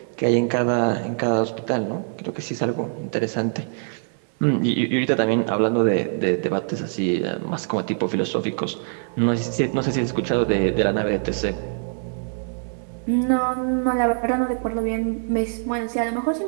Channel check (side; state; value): left; silent; 60 dB below the other